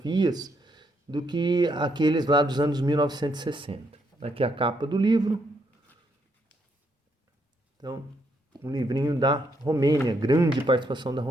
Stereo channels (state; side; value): normal; both; correlation 0.75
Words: do que aqueles lá dos anos 1960. Aqui a capa do livro. Então, um livrinho da Romênia, grande participação da